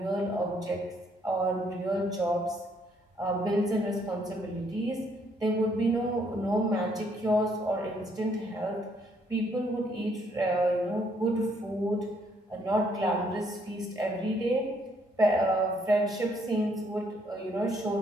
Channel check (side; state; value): both; normal; correlation 0.69